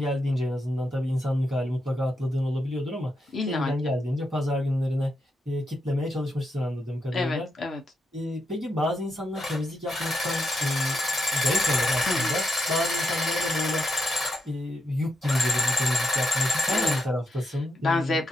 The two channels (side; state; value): both; normal; correlation 0.81